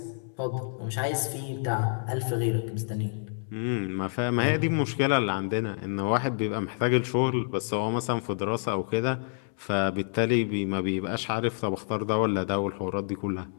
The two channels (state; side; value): silent; right; digital silence